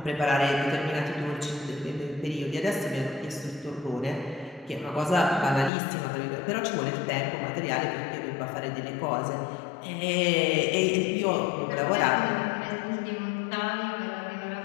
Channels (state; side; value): drops out; right; at 5.7 s